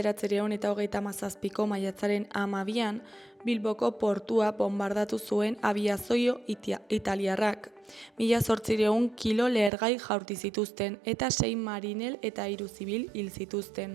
maiatzaren 12an, Bilboko portua bombardatu zuen abiazio italiarrak. 1800 kilo lehergai jaurti zituzten eta 6 marinel eta 3 zibil hil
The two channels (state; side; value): drops out; left; at 9.7 s